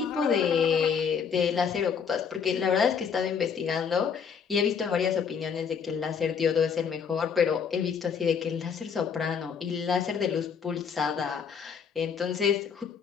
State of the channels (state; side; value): quieter; right; 6.7 dB